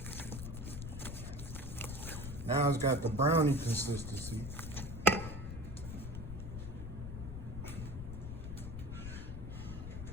Now it's got the brownie consistency.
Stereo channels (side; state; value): left; noise; rumble, 7 dB below the sound